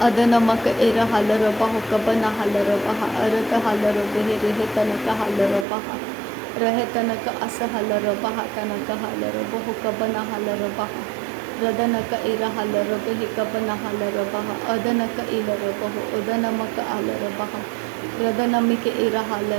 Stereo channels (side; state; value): left; drops out; at 5.7 s